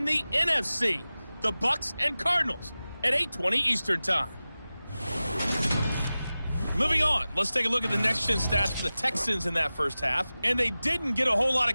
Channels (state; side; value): inverted; both; correlation -0.96